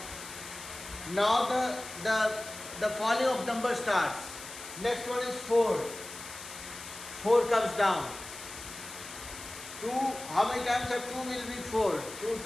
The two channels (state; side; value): noise; left; hiss, 12 dB below the sound